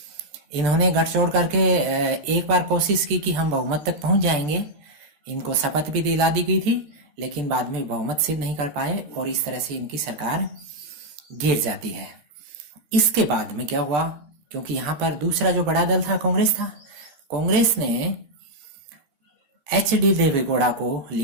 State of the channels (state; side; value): late; left; 14 ms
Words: इन्होंने गठजोड़ करके एक बार कोशिश की कि हम बहुमत तक पहुंच जाएंगे, इनको शपथ भी दिला दी गई थी, लेकिन बाद में बहुमत सिद्ध नहीं कर पाए, और इस तरह से इनकी सरकार गिर जाती है। इसके बाद में क्या हुआ? क्योंकि यहाँ पर दूसरा जो बड़ा दल था कांग्रेस था। कांग्रेस ने एच.डी. देवेगौड़ा को